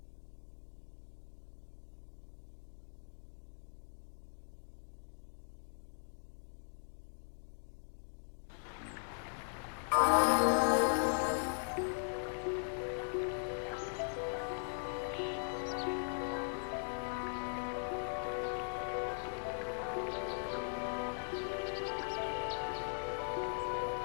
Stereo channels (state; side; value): silent; right; digital silence